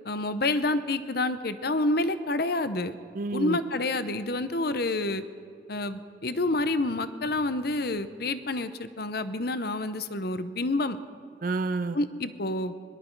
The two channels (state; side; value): normal; both; correlation 0.33